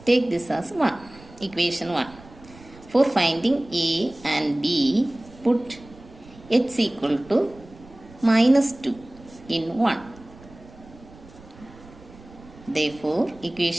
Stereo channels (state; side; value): noise; right; rumble, 22 dB below the sound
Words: Take this as 1, equation 1. For finding a and b, put x equal to minus 2 in 1. Therefore,